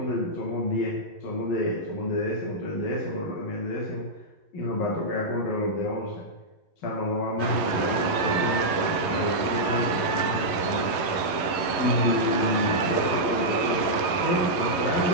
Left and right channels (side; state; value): right; late; 11 ms